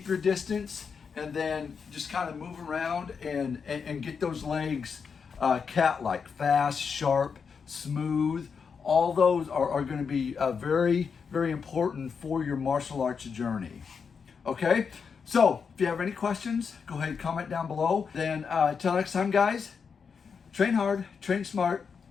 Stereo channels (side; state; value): right; quieter; 6.0 dB